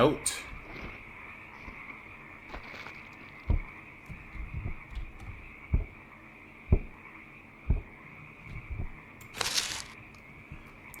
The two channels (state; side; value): identical; both; correlation 1.00